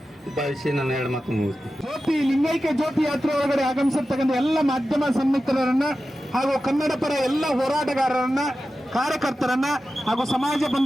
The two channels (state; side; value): normal; both; correlation 0.93